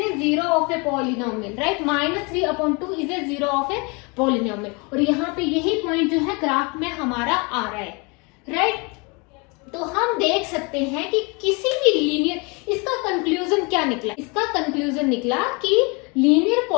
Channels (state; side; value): quieter; right; 29.9 dB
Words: zero of a polynomial, right, -3/2 is a zero of a polynomial, और यहाँ पे यही पॉइंट जो है ग्राफ में हमारा आ रहा है, राइट। तो हम देख सकते हैं कि किसी भी लीनियर, इसका कंक्लूजन क्या निकला, इसका कंक्लूजन निकला कि लीनियर